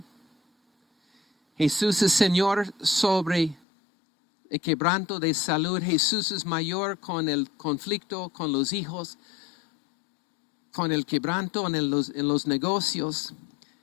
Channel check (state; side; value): drops out; right; at 3.6 s